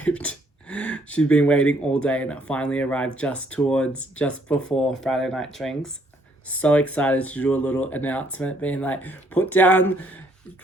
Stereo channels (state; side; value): normal; both; correlation 0.67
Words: She'd been waiting all day, and it finally arrived just before Friday night drinks. So excited to do a little announcement, being like,